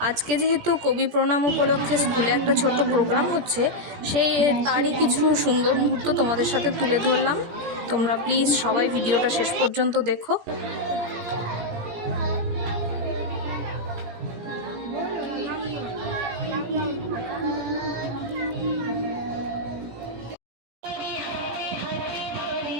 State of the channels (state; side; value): late; left; 17 ms